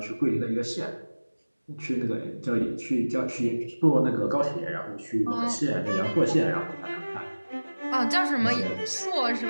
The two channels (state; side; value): inverted; both; correlation -1.00